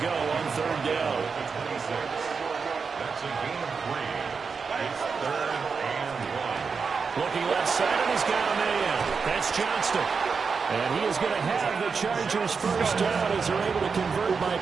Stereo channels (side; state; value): left; quieter; 5.3 dB